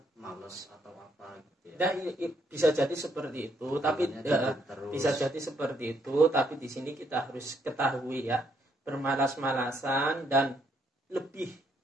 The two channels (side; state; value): both; normal; correlation 0.72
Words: males atau apa gitu ya. Nah, bisa jadi seperti itu, tapi bisa jadi seperti itu, tapi di sini kita harus ketahui, ya, bermalas-malasan dan lebih